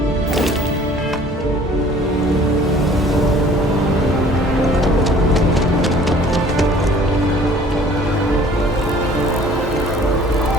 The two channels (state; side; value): normal; both; correlation 0.52